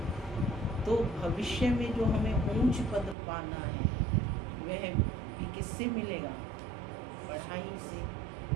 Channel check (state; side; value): drops out; left; at 3.2 s